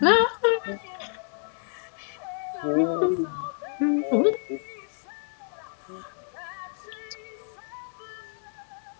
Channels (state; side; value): silent; right; 56 dB below the other